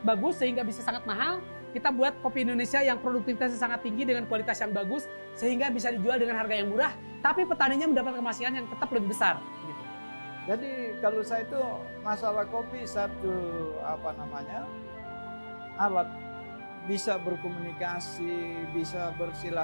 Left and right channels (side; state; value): both; inverted; correlation -1.00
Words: bagus sehingga bisa sangat mahal. Kita buat kopi Indonesia yang produktivitasnya sangat tinggi dengan kualitas yang bagus sehingga bisa dijual dengan harga yang murah, tapi petaninya mendapat kemasihan yang tetap lebih besar. Gitu. Jadi kalau saya itu masalah kopi alat bisa berkomunikasi, bisa